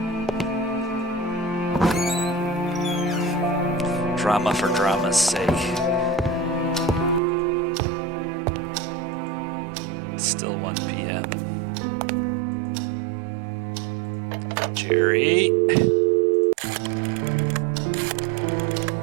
Drama for drama's sake. Still 1 p.m. Jerry.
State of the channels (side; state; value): left; drops out; at 7.2 s